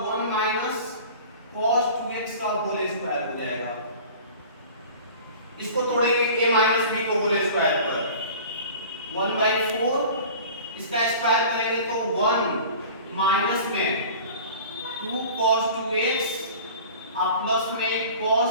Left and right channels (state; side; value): inverted; both; correlation -0.41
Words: 1 माइनस cos 2x का होल स्क्वायर हो जाएगा। इसको तोड़ेंगे a माइनस b को होल स्क्वायर पर 1/4, इसका स्क्वायर करेंगे तो 1 माइनस में 2 cos 2x और प्लस में